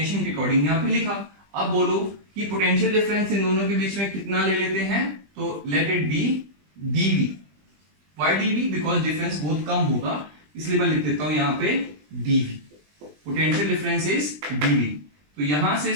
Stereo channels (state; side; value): late; left; 20 ms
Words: के अकॉर्डिंग यहां पे लिखा। अब बोलो कि पोटेंशियल डिफरेंस इन दोनों के बीच में कितना ले लेते हैं, तो late it B dV। Why dV? Because difference बहुत कम होगा, इसलिए मैं लिख देता हूं यहां पे dV। Potential difference is dV। तो यहां से